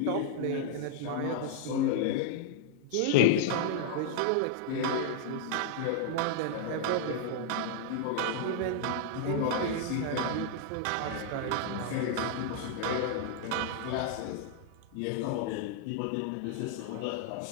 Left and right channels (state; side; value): different; both; correlation 0.00